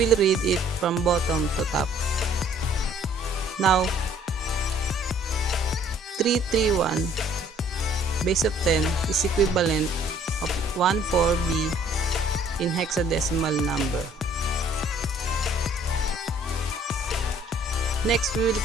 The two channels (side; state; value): both; normal; correlation 0.59